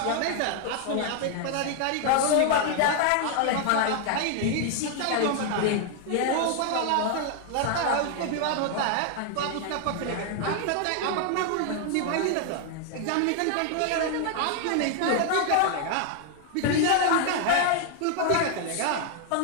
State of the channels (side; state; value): both; different; correlation 0.00